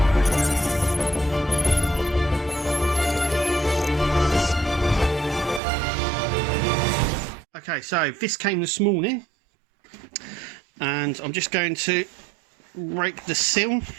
Okay, so this came this morning and I'm just going to rake the seal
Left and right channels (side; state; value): left; drops out; at 5.6 s